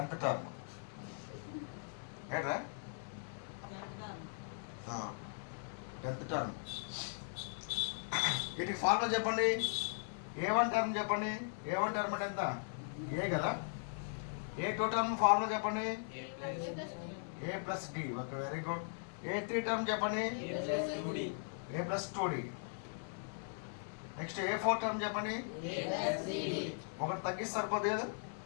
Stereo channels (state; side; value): silent; right; digital silence